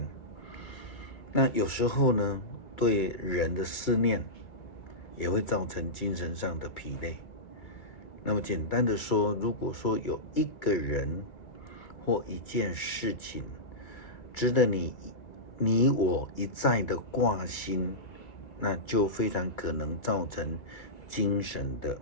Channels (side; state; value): right; late; 2.2 ms